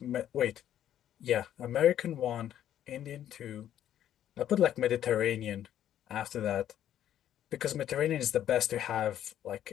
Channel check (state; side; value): quieter; right; 11.0 dB